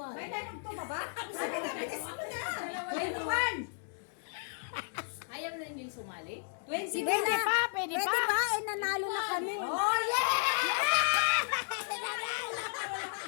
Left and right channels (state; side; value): silent; right; digital silence